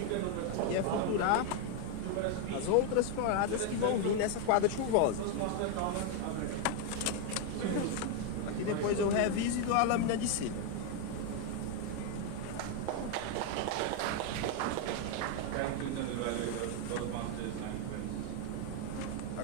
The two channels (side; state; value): both; different; correlation 0.01